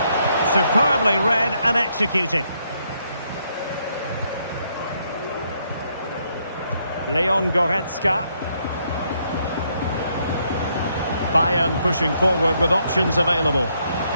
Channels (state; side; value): inverted; both; correlation -0.74